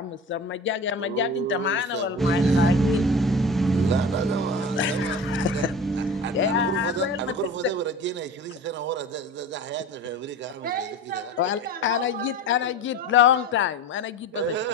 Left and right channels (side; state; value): both; normal; correlation 0.34